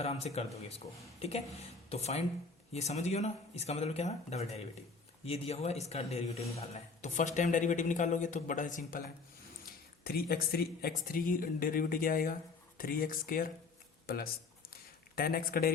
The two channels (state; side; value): quieter; right; 4.4 dB